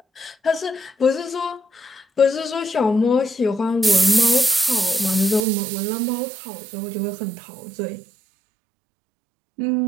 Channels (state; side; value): drops out; left; at 5.5 s